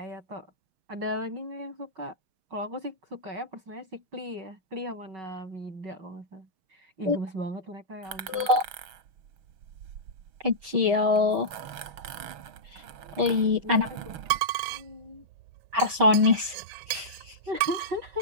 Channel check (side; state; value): left; late; 6.3 ms